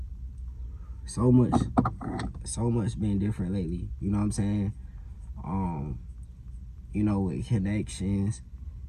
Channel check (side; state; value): both; identical; correlation 1.00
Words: so much been different lately. You know what I'm saying? Um, with connections,